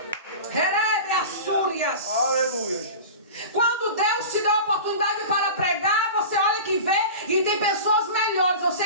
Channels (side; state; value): both; inverted; correlation -0.33